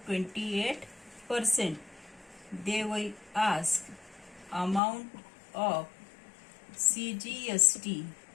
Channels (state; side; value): drops out; right; at 4.8 s